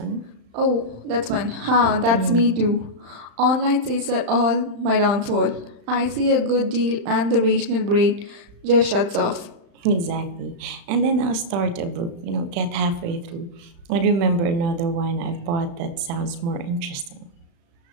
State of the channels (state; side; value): late; left; 35 ms